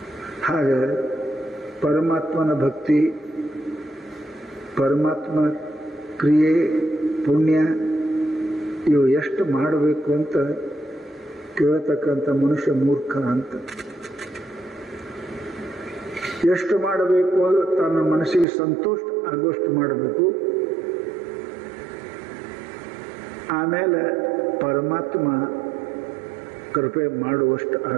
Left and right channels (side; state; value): left; drops out; at 18.4 s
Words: ಹಾಗೆ ಪರಮಾತ್ಮನ ಭಕ್ತಿ, ಪರಮಾತ್ಮನ ಕ್ರಿಯೆ, ಪುಣ್ಯ ಇವು ಎಷ್ಟು ಮಾಡಬೇಕು ಅಂತ ಕೇಳತಕ್ಕಂಥ ಮನುಷ್ಯ ಮೂರ್ಖ ಅಂತ. ಎಷ್ಟು ಮಾಡಬೇಕು ಅಂದ್ರೆ ತನ್ನ ಮನಸ್ಸಿಗೆ ಸಂತೋಷ ಆಗುವಷ್ಟು ಮಾಡಬೇಕು. ಆಮೇಲೆ ಪರಮಾತ್ಮ ಕೃಪೆ ಮಾಡುವಷ್ಟು